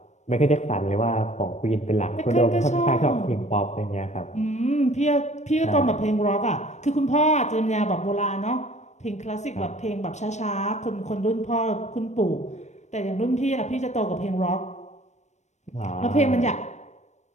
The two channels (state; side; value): late; right; 0.34 ms